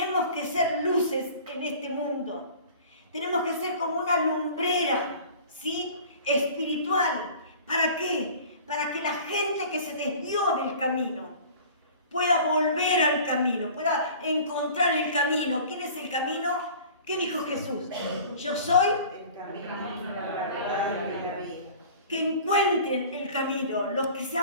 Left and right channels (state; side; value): inverted; both; correlation -0.44